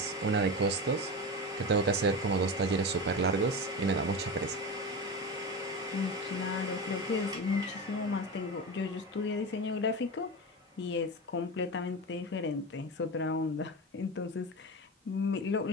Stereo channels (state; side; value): normal; both; correlation 0.23